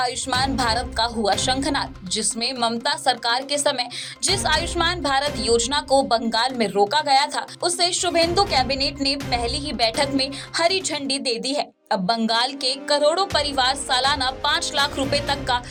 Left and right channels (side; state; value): both; identical; correlation 1.00